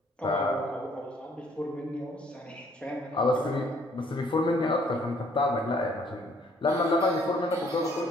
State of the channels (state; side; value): normal; both; correlation 0.62